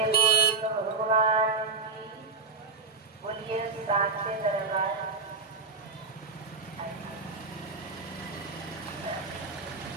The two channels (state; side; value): quieter; left; 4.3 dB